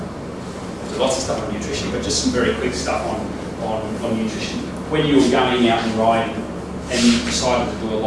lots of stuff on nutrition, but just some very quick stuff on nutrition. When you're going out and riding and you decided to do a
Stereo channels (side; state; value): both; identical; correlation 1.00